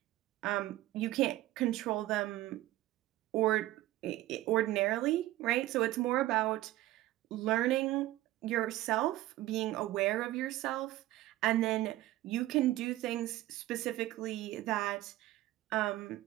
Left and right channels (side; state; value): left; quieter; 16.1 dB